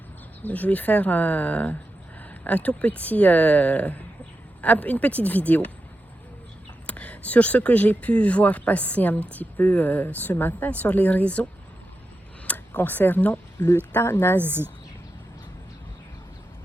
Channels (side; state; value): both; normal; correlation 0.89